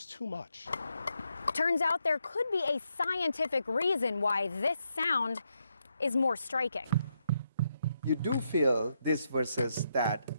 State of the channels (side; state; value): both; inverted; correlation -0.80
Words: too much. Turns out there could be a scientific reason why this sound is more striking. You do feel this versus that